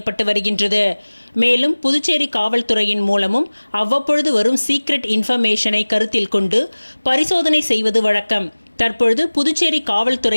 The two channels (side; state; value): both; inverted; correlation -1.00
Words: வருகின்றது. மேலும் புதுச்சேரி காவல்துறையின் மூலமும் அவ்வப்பொழுது வரும் சீக்ரெட் இன்ஃபர்மேஷனை கருத்தில் கொண்டு பரிசோதனை செய்வது வழக்கம். தற்பொழுது புதுச்சேரி